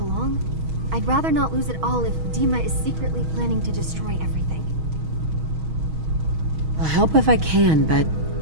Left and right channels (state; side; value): late; left; 6.3 ms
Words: I'd rather not lose it all if Dima is secretly planning to destroy everything. I'll help if I can, but